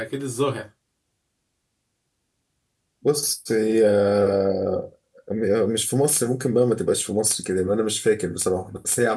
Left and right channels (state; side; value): identical; both; correlation 1.00